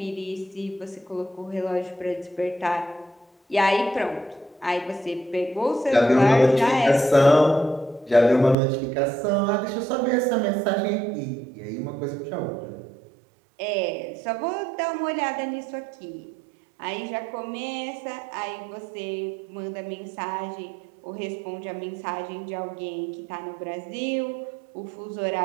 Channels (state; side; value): drops out; left; at 8.6 s